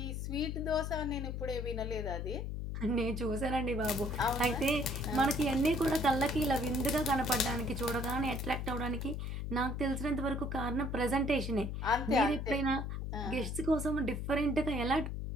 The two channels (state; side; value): noise; left; hum, 4 dB below the sound